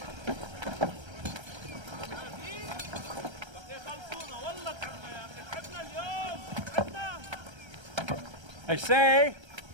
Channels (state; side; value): late; left; 1.3 ms